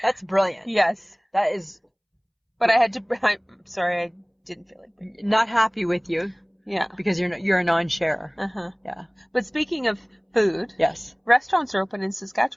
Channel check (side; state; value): both; identical; correlation 1.00